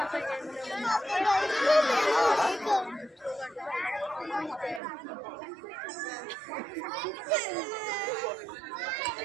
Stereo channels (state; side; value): drops out; left; at 4.8 s